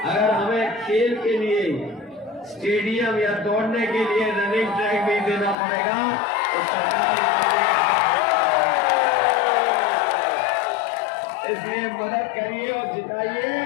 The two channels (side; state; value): right; drops out; at 5.6 s